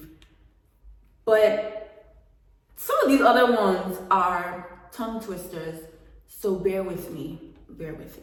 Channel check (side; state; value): both; identical; correlation 1.00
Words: but some of these other ones are tongue twisters, so bear with me.